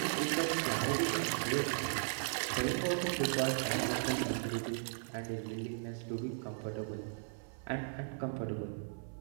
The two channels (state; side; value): silent; left; 53 dB below the other